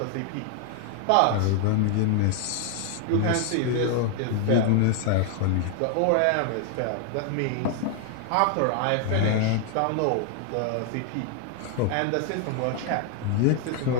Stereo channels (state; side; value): different; both; correlation 0.00